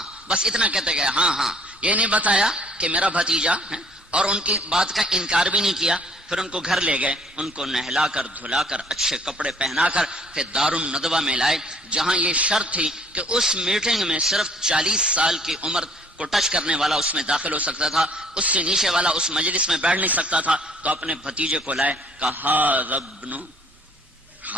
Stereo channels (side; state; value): both; normal; correlation 0.58